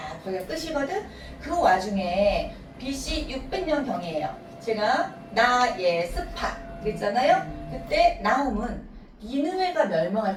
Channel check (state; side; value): identical; both; correlation 1.00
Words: 거기가 끝이거든. 그 와중에 BC 600년 경이에요. 제가 나예스파 그랬잖아요. 그때 나움은 니느웨가